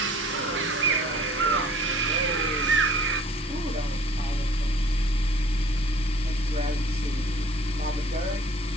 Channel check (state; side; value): normal; both; correlation 0.52